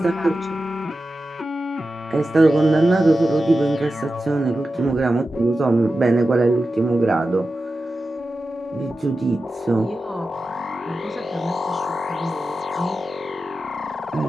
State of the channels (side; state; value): both; normal; correlation 0.92